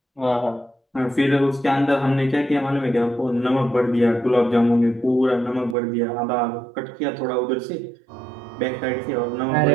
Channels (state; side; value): drops out; left; at 5.8 s